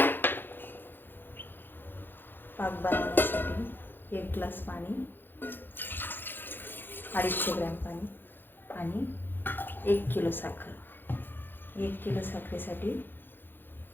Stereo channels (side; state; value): right; late; 0.098 ms